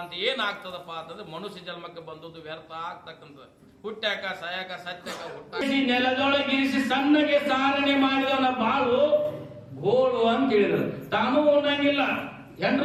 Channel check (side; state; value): both; identical; correlation 1.00